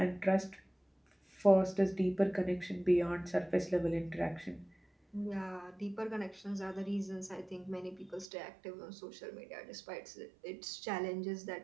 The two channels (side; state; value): left; drops out; at 8.3 s